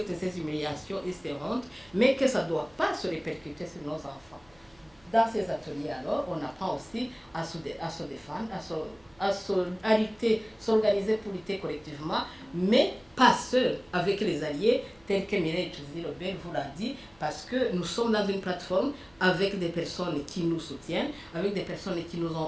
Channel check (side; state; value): right; noise; hum, 30 dB below the sound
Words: ces humiliations et ces hontes, mais que ça ne doit pas se répercuter sur nos enfants. Dans ces ateliers, alors, on apprend aussi à se défendre, à lutter, s'organiser pour lutter collectivement, mais pas seul, avec les alliés, tels que Mireille Tchouzi-Lebel vous l'a dit, parce que nous sommes dans une plateforme avec des personnes qui nous soutiennent, avec des personnes qui nous